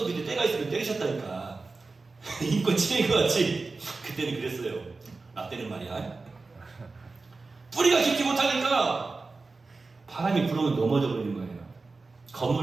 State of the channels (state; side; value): quieter; left; 3.8 dB